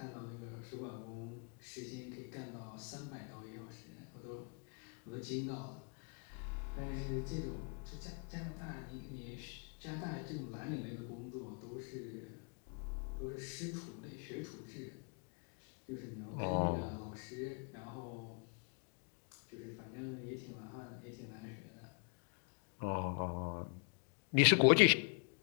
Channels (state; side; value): quieter; right; 39.0 dB